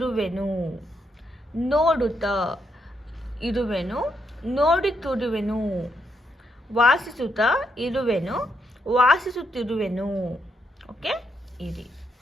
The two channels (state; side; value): normal; both; correlation 0.78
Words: ನೋಡುತ್ತಾ ಇರುವೆನು, ನೋಡುತ್ತಿರುವೆನು. ವಾಸಿಸುತ್ತಾ ಇರುವೆನು, ವಾಸಿಸುತ್ತಿರುವೆನು. ಓಕೆ, ಇರಿ.